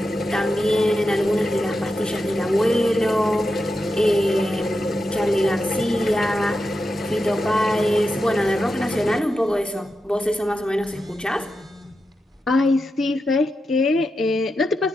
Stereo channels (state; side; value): normal; both; correlation 0.88